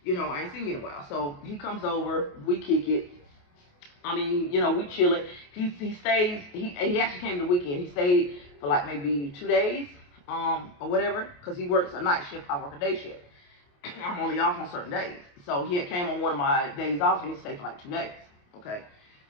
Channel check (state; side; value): late; right; 28 ms